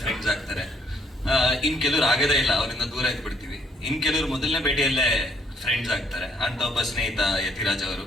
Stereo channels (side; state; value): both; normal; correlation 0.67